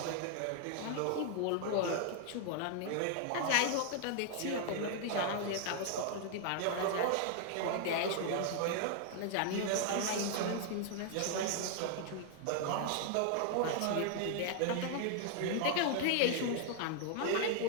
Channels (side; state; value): both; different; correlation 0.00